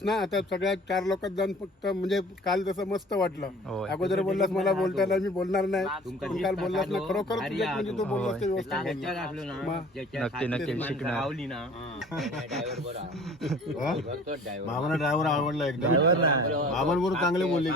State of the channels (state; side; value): normal; both; correlation 0.47